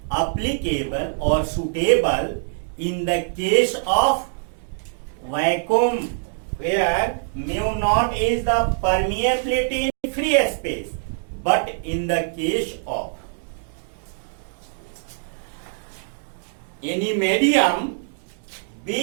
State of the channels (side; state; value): left; silent; digital silence